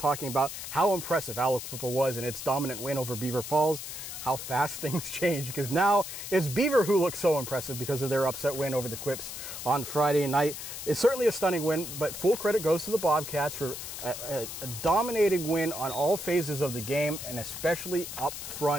about how impressive Aliquippa was in its dominant win over Beaver Falls, how fast things change, because now it's Beaver who looks so impressive because of their upset win over the Quips on Friday night. It's certainly a stunning win, but full credit goes to the Bobcats for a dominating win on all phases of the game, and especially up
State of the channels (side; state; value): left; noise; hiss, 8 dB below the sound